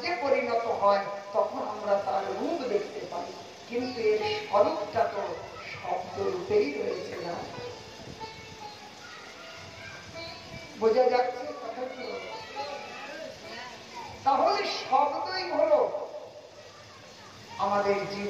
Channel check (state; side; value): identical; both; correlation 1.00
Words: পরিণত হয়, তখন আমরা তার রূপ দেখতে পাই। কিন্তু এর স্বরূপটা তো শব্দ রূপেই রয়েছে না। বোঝা যাচ্ছে কথাগুলো? তাহলে শব্দই হলো আমাদের